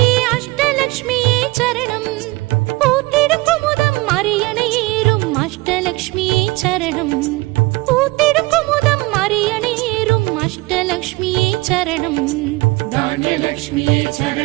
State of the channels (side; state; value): left; quieter; 22.6 dB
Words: அஷ்டலக்ஷ்மியே சரணம். பூத்திடும் குமுதம் அரியணை ஏறும் அஷ்டலக்ஷ்மியே சரணம். பூத்திடும் குமுதம் அரியணை ஏறும் அஷ்டலக்ஷ்மியே சரணம். தானியலக்ஷ்மியே